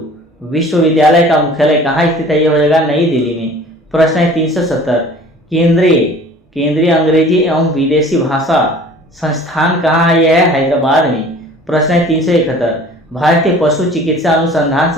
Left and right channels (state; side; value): normal; both; correlation 0.47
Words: विश्वविद्यालय का मुख्यालय कहाँ स्थित है? यह हो जाएगा नई दिल्ली में। प्रश्न है 370, केंद्रीय अंग्रेजी एवं विदेशी भाषा संस्थान कहाँ है? यह है हैदराबाद में। प्रश्न है 371, भारतीय पशु चिकित्सा अनुसंधान